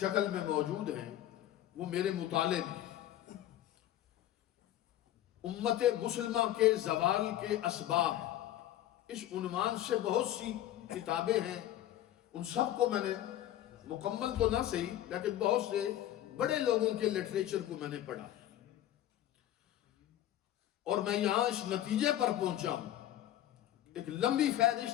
میں موجود ہیں، وہ میرے مطالعے میں امت مسلمہ کے زوال کے اسباب اس عنوان سے بہت سی کتابیں ہیں. ان سب کو میں نے مکمل تو نہ صحیح لیکن بہت سے بڑے لوگوں کے لٹریچر کو میں نے پڑھا اور میں یہاں اس نتیجے پر پہنچا ہوں ایک لمبی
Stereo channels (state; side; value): quieter; right; 12.8 dB